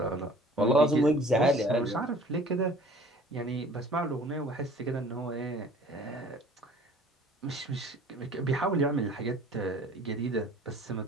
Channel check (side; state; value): both; normal; correlation 0.49